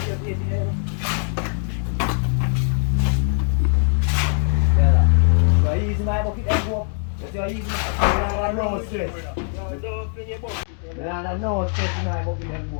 easy my bucket and go up. That's easy. I no stress. I no stress in my bucket and go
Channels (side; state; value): right; silent; 62 dB below the other